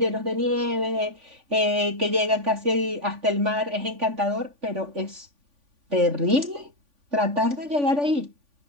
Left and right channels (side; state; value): left; late; 3.5 ms